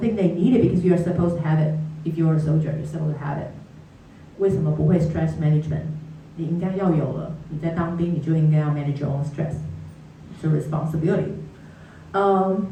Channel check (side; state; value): both; identical; correlation 1.00